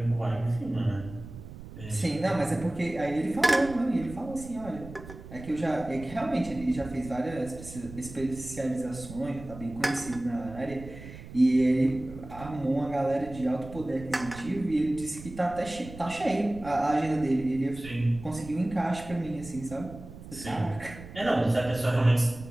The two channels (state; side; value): noise; right; rumble, 14 dB below the sound